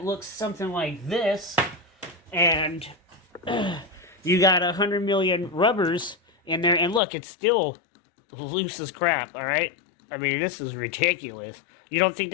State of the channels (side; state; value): right; drops out; at 7.0 s